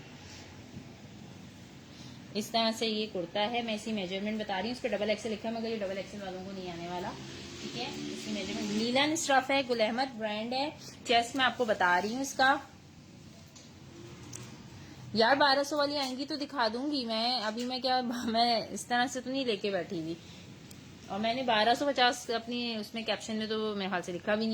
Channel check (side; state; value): both; identical; correlation 1.00